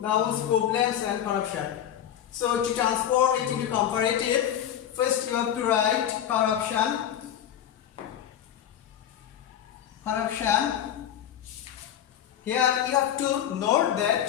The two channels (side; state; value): right; quieter; 10.3 dB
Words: nouns, problems and corruption. So to transform it into comparative, first you have to write corruption, corruption. Here you have to note that